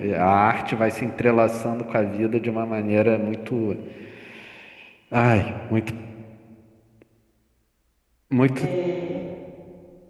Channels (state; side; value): identical; both; correlation 1.00